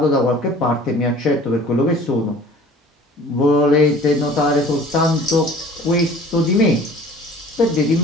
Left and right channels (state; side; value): normal; both; correlation 0.47